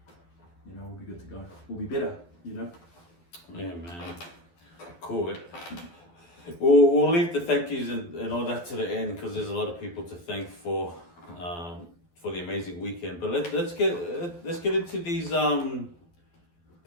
We'll be good to go. We'll be better. Yeah, man. Cool. We'll leave the thank yous and all that to the end because there's a lot of people to thank for the amazing weekend. But let's get into these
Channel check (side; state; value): right; late; 12 ms